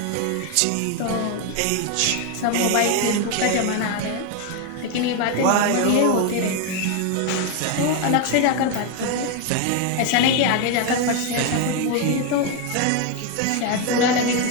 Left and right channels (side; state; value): both; different; correlation 0.01